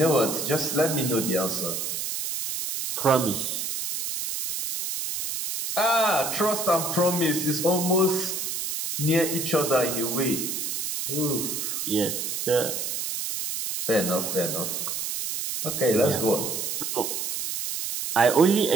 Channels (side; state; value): right; noise; hiss, 3 dB below the sound